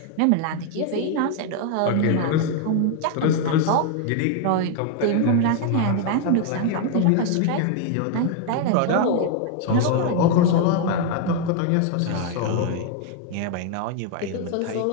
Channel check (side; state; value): both; different; correlation 0.00